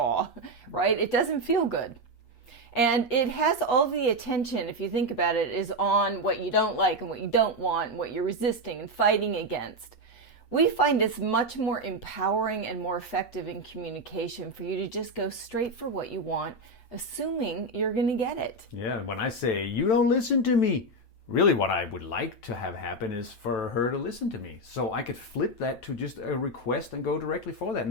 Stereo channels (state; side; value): late; right; 8.4 ms